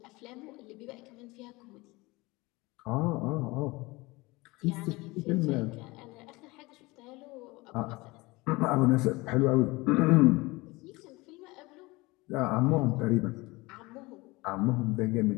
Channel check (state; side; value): quieter; right; 22.8 dB